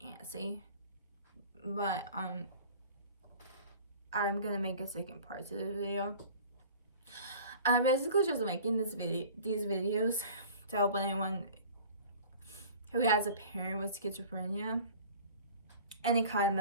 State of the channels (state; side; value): inverted; both; correlation -0.44